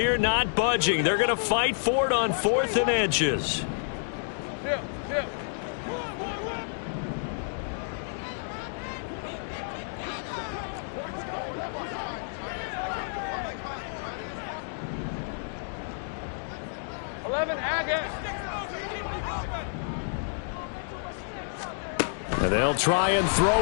not budging. They're going to fight for it on 4th and inches. Yeah. 11, Agate. And they'll try and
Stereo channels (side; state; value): right; silent; digital silence